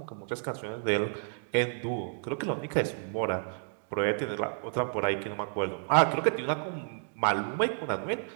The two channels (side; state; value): left; silent; digital silence